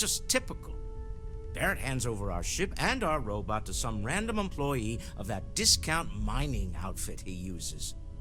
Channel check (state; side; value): identical; both; correlation 1.00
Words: just typical. Barrett hands over our ship and our robot to some random employee of that discount mining outfit he uses.